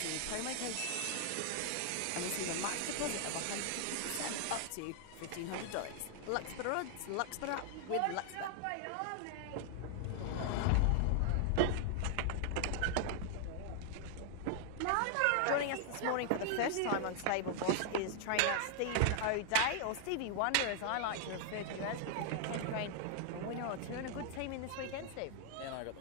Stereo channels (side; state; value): both; different; correlation 0.00